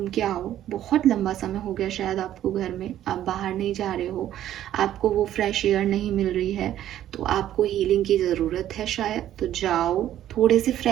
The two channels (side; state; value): left; quieter; 12.0 dB